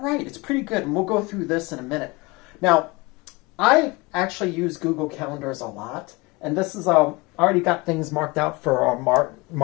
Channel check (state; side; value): quieter; right; 24.6 dB